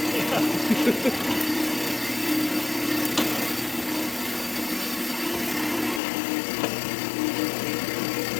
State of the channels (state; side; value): drops out; right; at 6.0 s